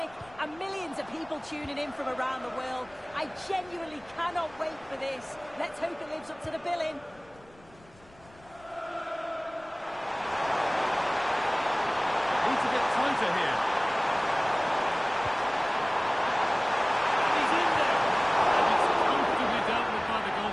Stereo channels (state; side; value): noise; left; rumble, 26 dB below the sound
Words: and millions of people tuning in from around the world. I genuinely cannot wait for this. Let's hope it lives up to the billing. Need to get tighter here. He's in there. And it's comfortably dealt with by the